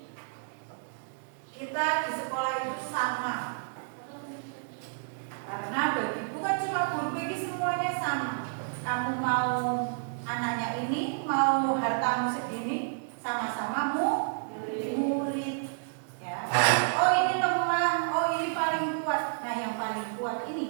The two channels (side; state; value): left; silent; digital silence